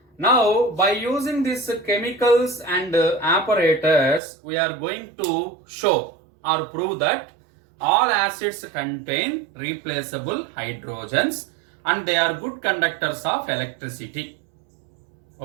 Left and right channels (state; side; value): drops out; left; at 4.2 s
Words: Now, by using these chemicals and apparatus, we are going to show or prove that all acids contain replaceable hydrogens and they are good conductors of electricity.